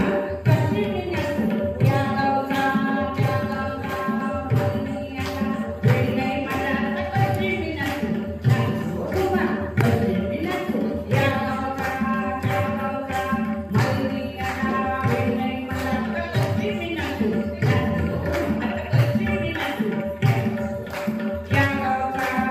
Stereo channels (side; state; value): both; identical; correlation 1.00